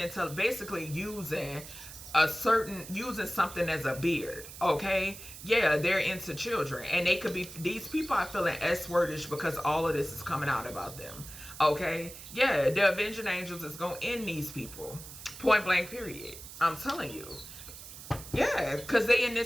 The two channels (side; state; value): right; noise; hiss, 14 dB below the sound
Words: to basically using using something as a beard, okay? Yeah, they're into children, and they could be, these people are feeling S-wordish because all of this is coming out about them, okay? Yeah, the avenging angels is gonna end these people, point blank period. I'm telling you. Yeah, because they in